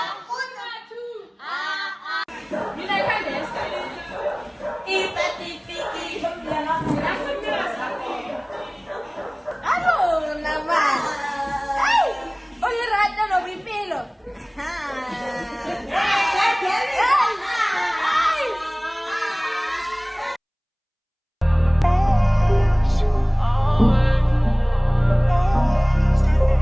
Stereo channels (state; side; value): identical; both; correlation 1.00